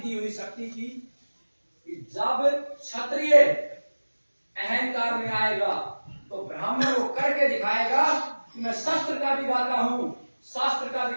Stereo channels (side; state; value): both; inverted; correlation -1.00